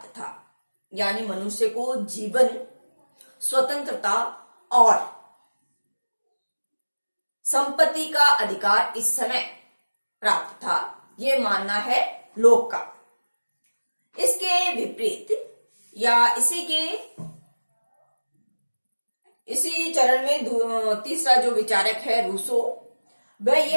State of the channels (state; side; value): inverted; both; correlation -1.00